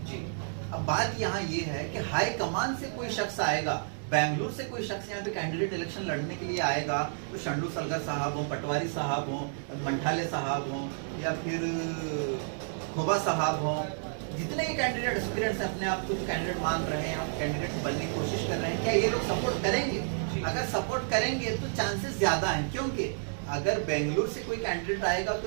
जी। अब बात यहाँ ये है कि हाई कमान से कोई शख्स आएगा, बेंगलुरु से कोई शख्स यहाँ पे कैंडिडेट इलेक्शन लड़ने के लिए आएगा, तो शरणु सलगर साहब हो, पटवारी साहब हो, मंठाले साहब हो या फिर खोबा साहब हो, जितने भी कैंडिडेट एस्पिरेंट्स अपने आप को कैंडिडेट मान रहे हैं, कैंडिडेट बनने की कोशिश कर रहे हैं, क्या ये लोग सपोर्ट करेंगे? अगर सपोर्ट करेंगे तो चांसेस ज्यादा हैं, क्योंकि अगर बेंगलुरु से कोई कैंडिडेट आएगा तो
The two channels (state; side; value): silent; left; digital silence